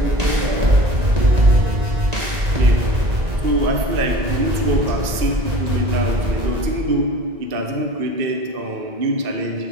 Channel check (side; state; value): left; late; 1.9 ms